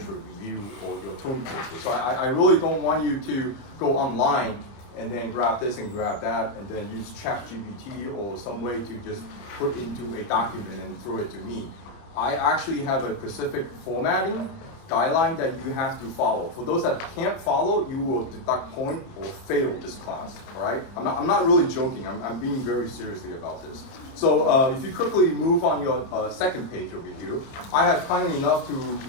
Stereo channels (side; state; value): right; late; 30 ms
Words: review or your term paper. So I really don't want you to go online and then grab this and grab that and then use ChatGPT or some way to just put into a document and throw it to me. I actually have a specific formatting guideline that you have to follow. For those that can't follow, you will deduct point or fail this class, all right? I'm not really joking, I'm being very seriously about this. So if you quickly move on your second page over here, I have kindly enough to